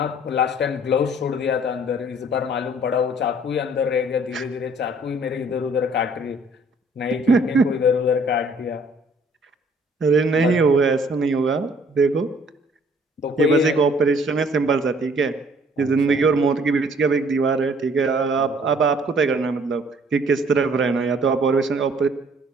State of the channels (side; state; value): both; normal; correlation 0.58